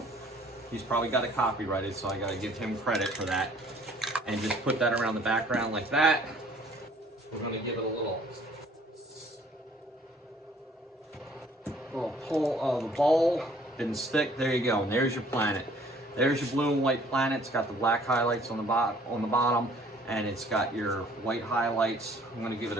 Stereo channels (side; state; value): both; normal; correlation 0.57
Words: He's probably got it copyrighted, so I got to give him credit for that. And just put that around the background like that. We're going to give it a little pull of the bowl. Didn't stick. There you go. And there's your planet. There's your blue and white planet. It's got the black highlights on the bottom, and it's got your white highlights. I'm going to give it a